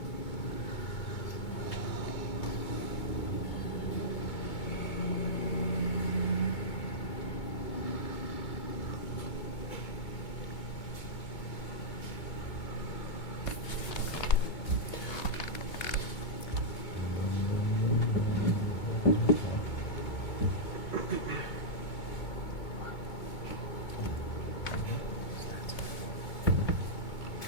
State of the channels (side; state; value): right; late; 2.2 ms